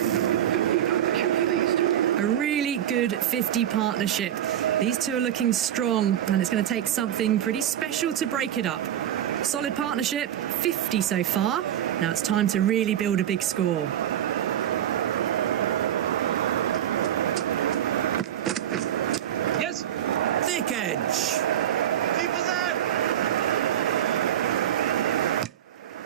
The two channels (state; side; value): quieter; left; 10.6 dB